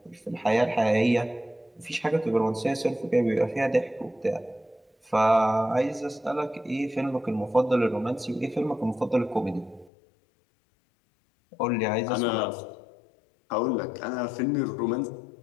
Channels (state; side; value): drops out; right; at 9.9 s